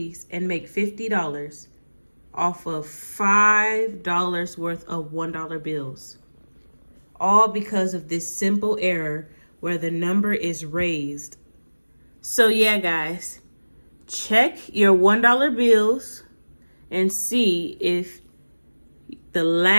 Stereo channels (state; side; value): inverted; both; correlation -1.00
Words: and make $50 off of $5 worth of $1 bills. All because of this simple error where the number is raised. So yeah, guys, check your $1 bills and see if the